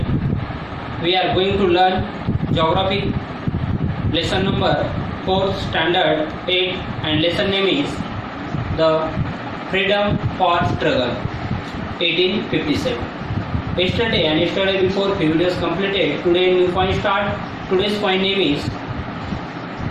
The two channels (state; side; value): identical; both; correlation 1.00